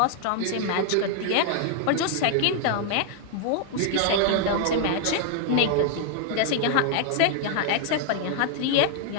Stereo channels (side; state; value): both; different; correlation 0.00